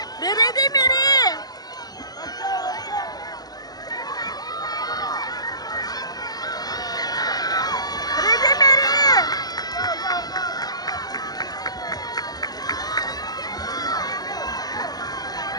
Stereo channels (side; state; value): right; late; 0.19 ms